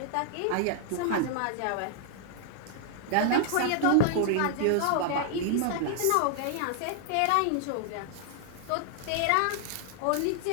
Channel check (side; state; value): both; different; correlation -0.01